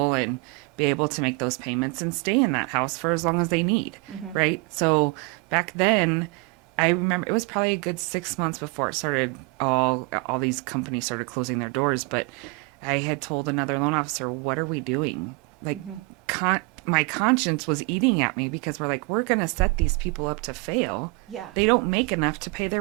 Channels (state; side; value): quieter; left; 27.9 dB